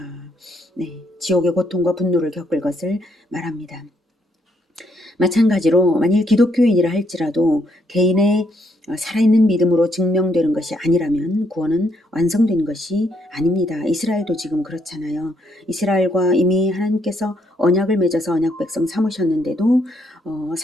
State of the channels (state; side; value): normal; both; correlation 0.73